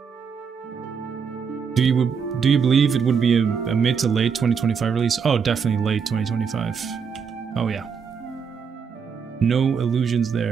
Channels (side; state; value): left; quieter; 6.3 dB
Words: Do you believe it would be a mid to late 2025 release? Oh, definitely late 2025. Oh yeah. No illusions